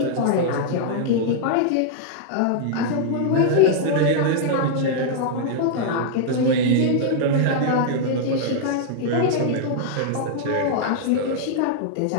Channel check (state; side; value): different; both; correlation -0.01